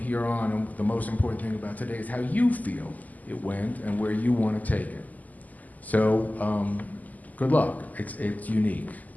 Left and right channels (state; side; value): late; right; 0.080 ms